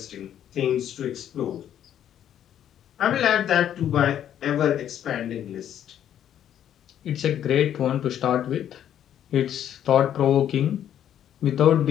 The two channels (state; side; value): quieter; right; 10.3 dB